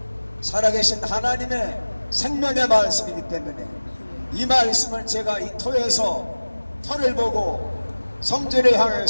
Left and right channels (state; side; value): inverted; both; correlation -1.00